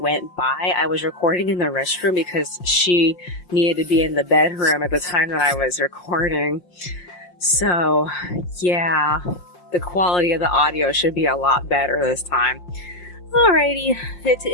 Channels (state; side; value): late; right; 5.6 ms